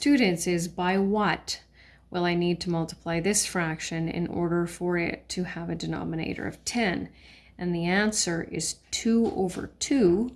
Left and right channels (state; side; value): identical; both; correlation 1.00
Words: is, by what will I need to multiply this fraction in order for it to have a denominator of 10? And the answer is 2 over